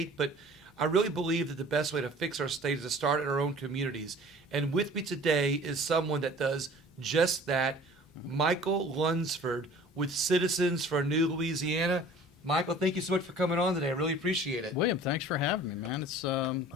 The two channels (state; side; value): normal; both; correlation 0.47